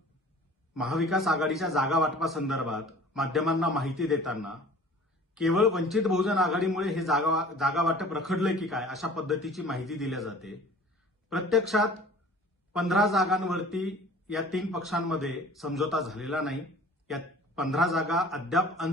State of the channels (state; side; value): normal; both; correlation 0.46